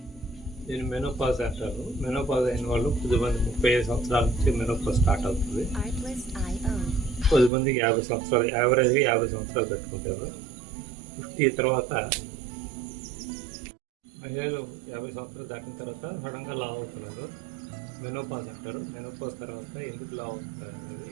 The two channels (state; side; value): drops out; left; at 7.5 s